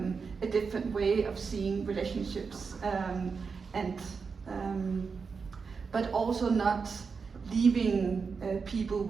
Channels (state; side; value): quieter; left; 5.3 dB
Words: a different way of seeing relationships, but also not leaving people